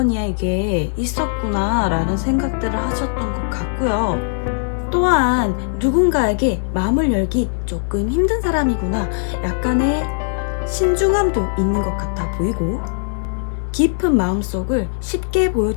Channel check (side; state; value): right; silent; digital silence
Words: 있었구나 라는 생각들을 하셨던 것 같고요. 또한 누군가에게 마음을 열기 조금 힘든 사람이구나, 약간의 신중함도 있는 것 같아 보이고, 깊은 마음속을 쉽게